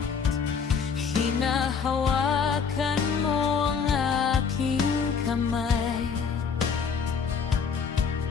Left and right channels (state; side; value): quieter; right; 6.1 dB